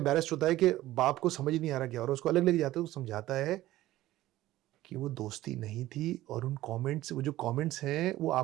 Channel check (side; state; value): left; quieter; 15.7 dB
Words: ہوتا ہے کہ باپ کو سمجھ نہیں آ رہا کیا، اور اس کو الگ لے کے جاتا ہے. وہ سمجھاتا ہے کہ وہ دوستی نہیں تھی، اور ان کامنٹس، وہ جو کامنٹس ہیں وہ